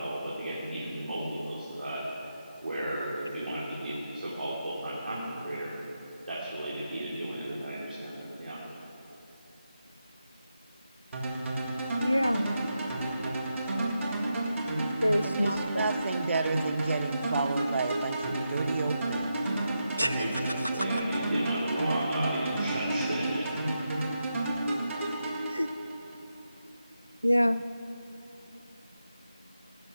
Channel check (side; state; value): both; inverted; correlation -0.86